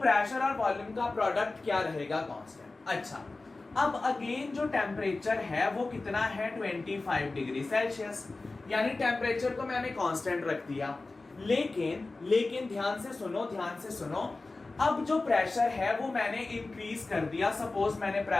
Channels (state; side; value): quieter; right; 3.4 dB